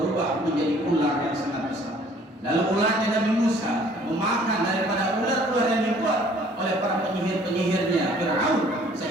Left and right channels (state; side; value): normal; both; correlation 0.56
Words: menjadi ular yang sangat besar. Lalu ularnya Nabi Musa memakan daripada ular-ular yang dibuat oleh para penyihir-penyihirnya Fir'aun,